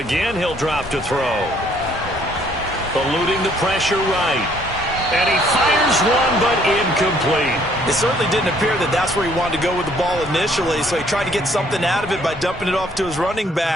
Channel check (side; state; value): both; normal; correlation 0.63